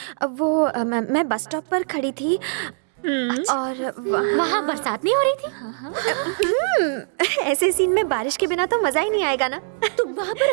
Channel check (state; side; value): silent; left; digital silence